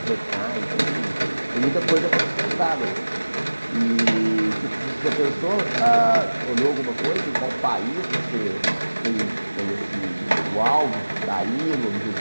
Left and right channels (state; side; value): inverted; both; correlation -1.00